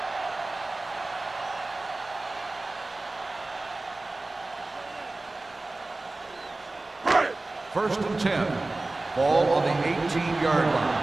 First and 10. Ball on the 18-yard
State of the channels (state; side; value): quieter; left; 3.0 dB